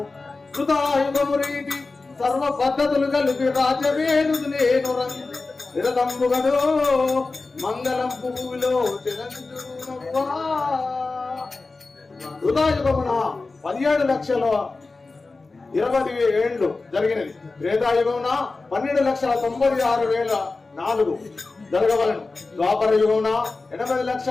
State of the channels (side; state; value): right; quieter; 3.7 dB